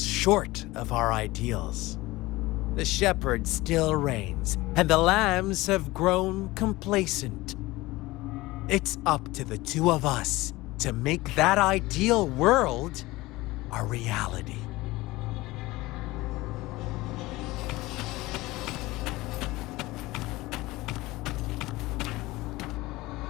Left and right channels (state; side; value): quieter; right; 19.8 dB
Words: short of our ideals. The shepherd still reigns, and the lambs have grown complacent. It's up to the two of us to make that ideal world a reality.